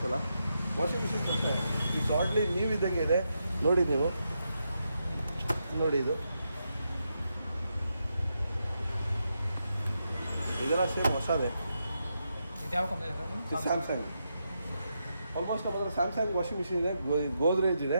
ಅಲ್ಲ, ವಾಷಿಂಗ್ ಮಿಷಿನ್ಸ್ ಅಷ್ಟೇ ಈ ಶಾರ್ಟ್ಲಿ ನೀವು ಇದ್ದಂಗೆ ಇದೆ ನೋಡಿ. ನೀವು ನೋಡಿ, ಇದೆಲ್ಲ ಸೇಮ್ ಹೊಸದೇ. ಇದು ಯಾವ ಕಂಪ್ನಿ? ಸ್ಯಾಮ್ಸಂಗ್. ಆಲ್ಮೋಸ್ಟ್ ನಮ್ಮ ಹತ್ರ ಸ್ಯಾಮ್ಸಂಗ್ ವಾಷಿಂಗ್ ಮಿಷಿನ್ ಇದೆ, ಗೋದ್ರೇಜ್ ಇದೆ.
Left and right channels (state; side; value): inverted; both; correlation -0.84